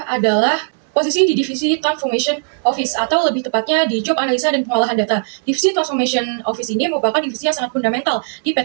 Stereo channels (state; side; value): silent; left; 64 dB below the other